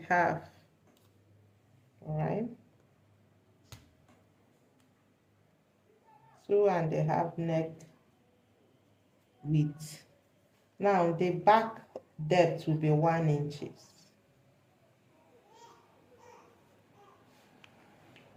All right, 2.5 neck width. Now, the back depth will be 1 inches.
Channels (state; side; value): identical; both; correlation 1.00